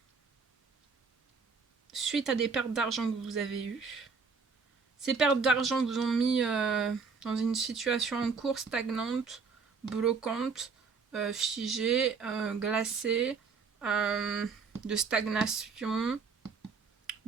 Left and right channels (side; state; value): left; quieter; 5.2 dB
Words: suite à des pertes d'argent que vous avez eues. Ces pertes d'argent vous ont mis dans une situation en cours stagnante, bloquante, figée, glacée, de stagnation,